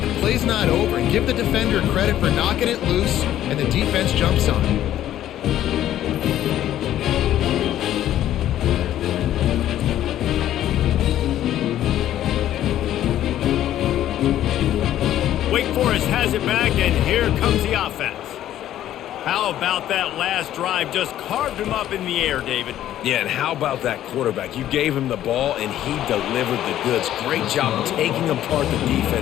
play's not over. And give the defender credit for knocking it loose, and the defense jumps on it. Wake Forest has it back, and here comes the offense. How about that last drive? Just carved him up in the air, David. Yeah, and how about that quarterback? You gave him the ball, and he delivered the goods. Great job taking apart the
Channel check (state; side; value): quieter; right; 12.3 dB